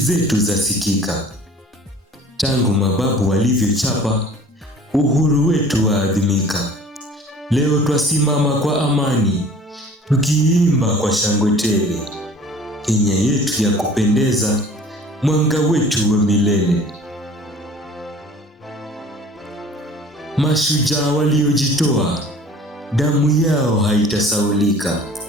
zasikika. Tangu mababu walivyochapa, uhuru wetu waadhimika. Leo twasimama kwa amani, tukiimba kwa shangwe tele. Kenya yetu ya kupendeza, mwanga wetu wa milele. Mashujaa waliojitoa, damu yao haitasaulika.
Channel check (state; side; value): normal; both; correlation 0.48